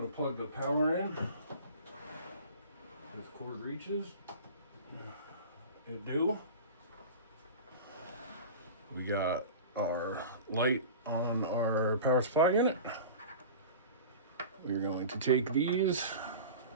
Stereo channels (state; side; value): inverted; both; correlation -0.35